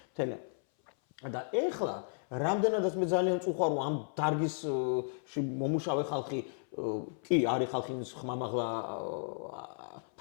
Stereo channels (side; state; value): right; silent; 55 dB below the other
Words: თელა. და ეხლა რამდენადაც მე ძალიან წუხარ რომ ამ დარგისში მომუშავე ხალხი კი არის ხალხი ხმამაღლა